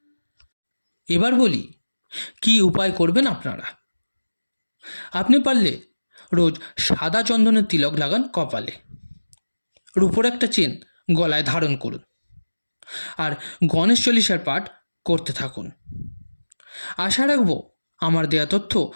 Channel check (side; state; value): both; inverted; correlation -1.00